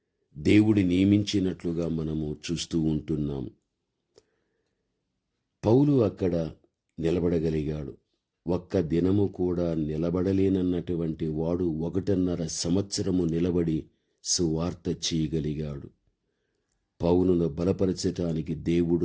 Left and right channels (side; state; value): both; identical; correlation 1.00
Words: దేవుడి నియమించినట్లుగా మనము చూస్తూ ఉంటున్నాం. పౌలు అక్కడ నిలబడగలిగాడు. ఒక్క దినము కూడా నిలబడలేనన్నటువంటి వాడు 1.5 సంవత్సరము నిలబడి సువార్త చేయగలిగాడు. పౌలును బలపరచటానికి